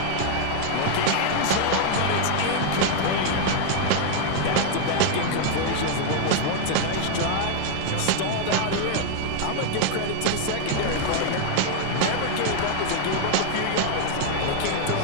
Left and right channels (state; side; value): different; both; correlation 0.00